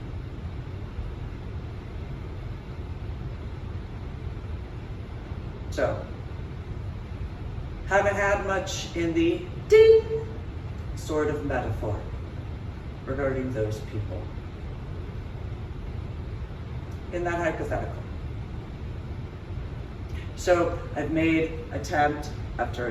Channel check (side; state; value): both; identical; correlation 1.00